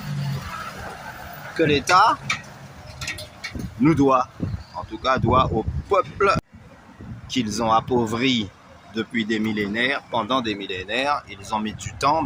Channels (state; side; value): identical; both; correlation 1.00